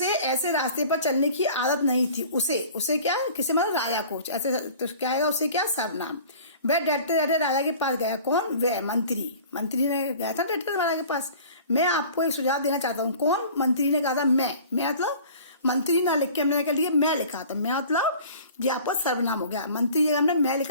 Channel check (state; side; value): inverted; both; correlation -0.45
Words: ऐसे रास्ते पर चलने की आदत नहीं थी। उसे क्या? किसे मतलब? राजा को। ऐसे तो क्या आएगा? उसे क्या? सर्वनाम। वह डरते डरते राजा के पास गया। कौन? वह मंत्री ने गया था डरते राजा के पास। मैं आपको एक सुझाव देना चाहता हूँ। कौन? मंत्री ने कहा था मैं मतलब मंत्री ना लिख के हमने क्या लिखा? मैं लिखा था। मैं मतलब ये आपका सर्वनाम हो गया। मंत्री जगह हमने मैं